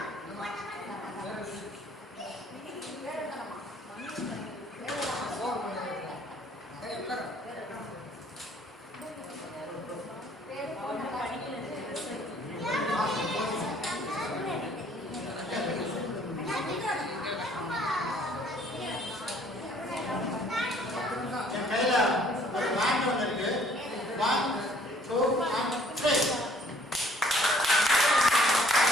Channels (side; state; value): both; normal; correlation 0.59